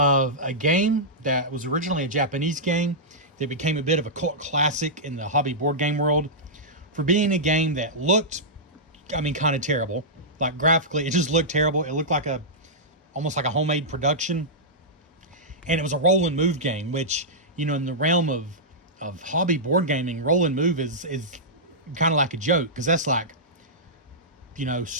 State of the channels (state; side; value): normal; both; correlation -0.13